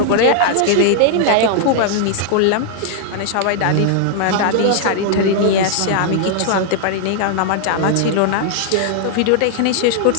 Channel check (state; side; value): different; both; correlation -0.01